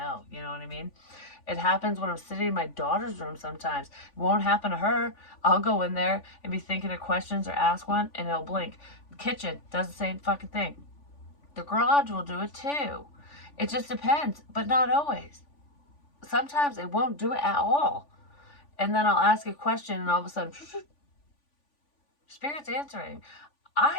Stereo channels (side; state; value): right; late; 3.5 ms